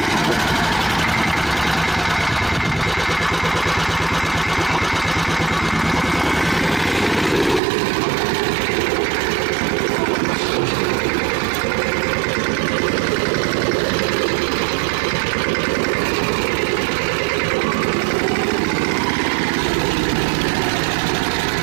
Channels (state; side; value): drops out; left; at 7.6 s